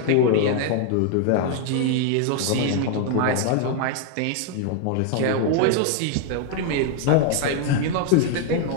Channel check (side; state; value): both; different; correlation 0.00